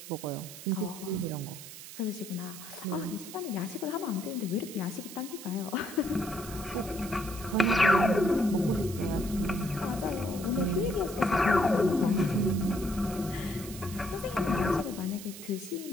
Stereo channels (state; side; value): noise; right; hiss, 13 dB below the sound